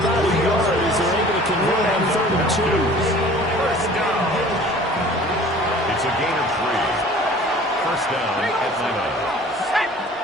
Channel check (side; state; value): both; normal; correlation 0.47